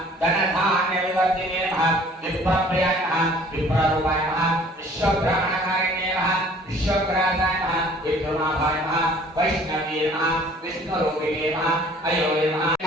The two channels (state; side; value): normal; both; correlation 0.53